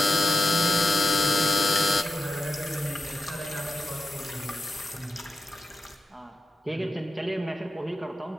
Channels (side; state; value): both; normal; correlation 0.91